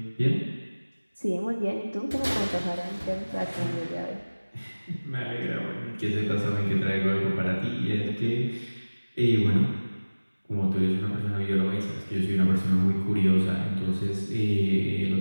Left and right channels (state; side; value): inverted; both; correlation -1.00